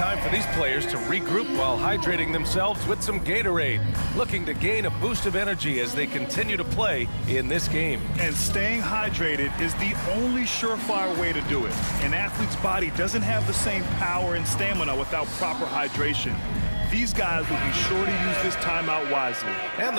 for these players to regroup while hydrating themselves with some Gatorade, looking to gain a boost of energy as they continue to play in this game. And staying hydrated is the only surefire way to do it. An athlete's body doesn't have the same power and stamina without proper hydration. These guys will be sure to use this timeout wisely. And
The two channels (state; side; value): inverted; both; correlation -1.00